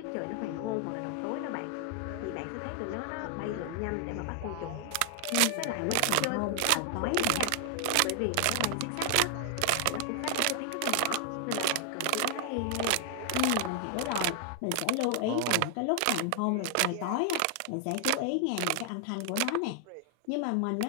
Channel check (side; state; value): both; different; correlation 0.00